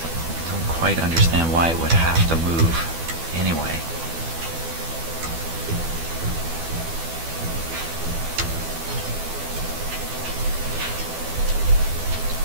Quite understand why it would have to move anyway.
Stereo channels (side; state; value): left; late; 12 ms